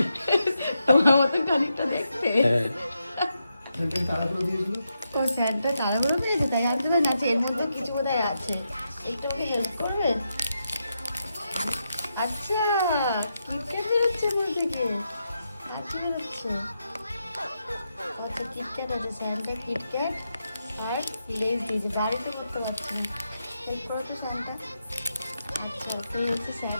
তোমার মতো খানিকটা দেখতে। হ্যাঁ তাড়াতাড়ি দিয়েছিল। তো স্যান্টা তাড়াহুড়ো পেয়েছে তাই আনতে পারে না। আচ্ছা, এর মধ্যে কিছু বোধহয় আছে, একটু আমাকে হেল্প করবে? আচ্ছা, কিটক্যাট বেরোচ্ছে আমার থেকে। আচ্ছা বেরোচ্ছে। আচ্ছা, কিটক্যাট আছে, স্যান্টা কিটক্যাট আর লেজ দিয়েছে। বাড়িতে করতে পারছি না, হেল্প করো তো স্যান্টা। আচ্ছা, তুই হচ্ছে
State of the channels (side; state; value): both; inverted; correlation -0.85